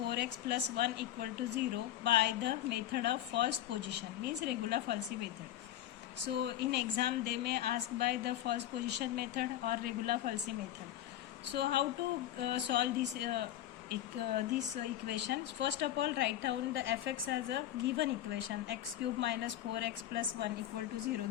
plus 1 equal to 0 by the method of false position, means regular falsi method. So in exam they may ask by the false position method or regular falsi method. So how to solve this equation? First of all, write down the fx as a given equation, x cube minus 4x plus 1 equal to 0.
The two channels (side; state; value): right; quieter; 12.3 dB